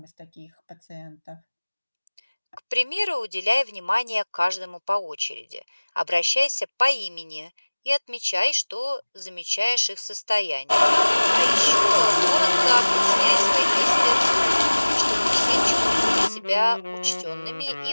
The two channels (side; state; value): both; inverted; correlation -1.00